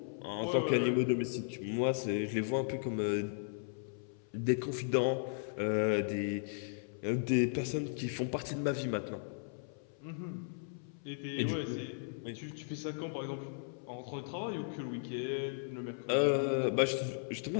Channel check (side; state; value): right; silent; 54 dB below the other